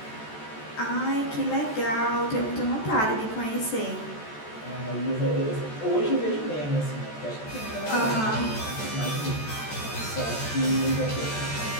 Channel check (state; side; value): late; right; 14 ms